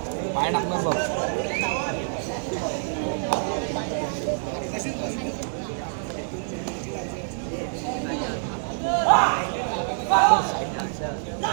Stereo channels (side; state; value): left; silent; digital silence